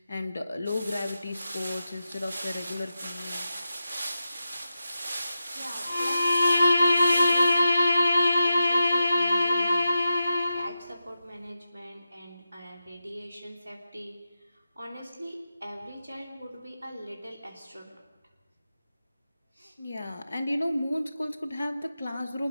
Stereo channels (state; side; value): inverted; both; correlation -0.91